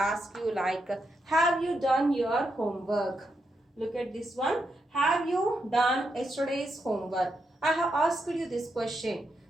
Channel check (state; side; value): normal; both; correlation 0.83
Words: you like, have you done your homework? Look at this one. Have you done yesterday's homework? I have asked you this question.